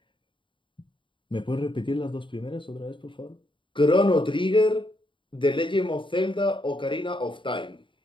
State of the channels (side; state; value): right; late; 0.24 ms